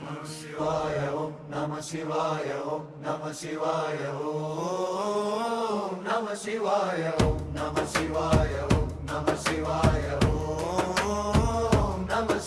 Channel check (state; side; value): identical; both; correlation 1.00